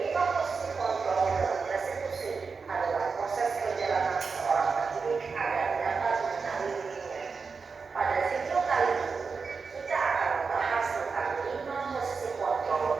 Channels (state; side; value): quieter; left; 5.0 dB